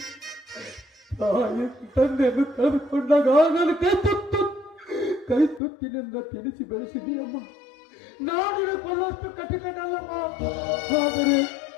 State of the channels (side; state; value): right; drops out; at 5.6 s